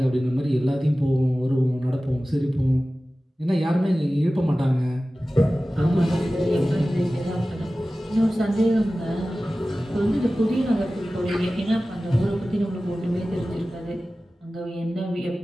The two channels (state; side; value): normal; both; correlation 0.96